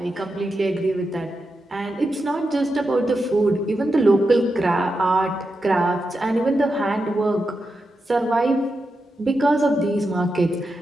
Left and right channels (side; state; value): both; normal; correlation 0.88